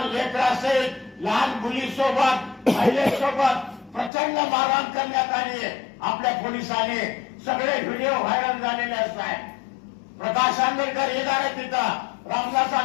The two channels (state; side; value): drops out; right; at 4.1 s